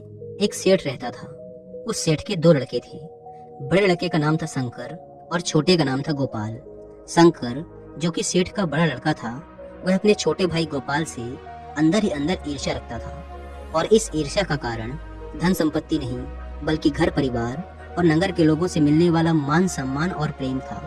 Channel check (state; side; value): identical; both; correlation 1.00